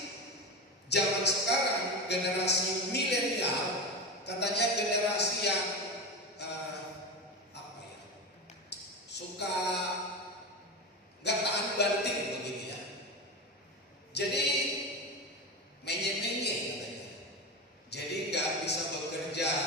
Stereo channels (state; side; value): normal; both; correlation 0.21